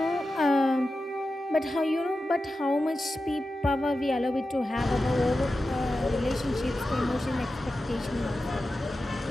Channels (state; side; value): normal; both; correlation 0.92